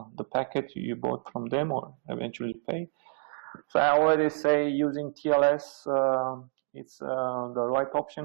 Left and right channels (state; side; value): silent; left; 59 dB below the other